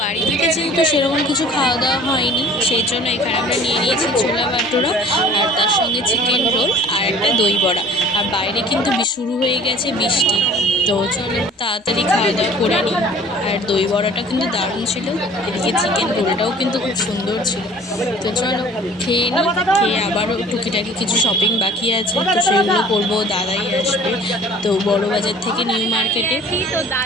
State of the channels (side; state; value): both; normal; correlation 0.48